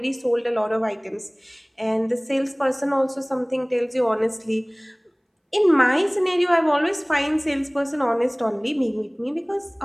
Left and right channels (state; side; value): identical; both; correlation 1.00